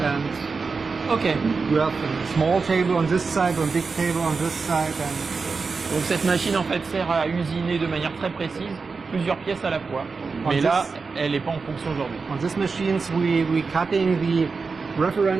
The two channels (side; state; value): left; quieter; 4.6 dB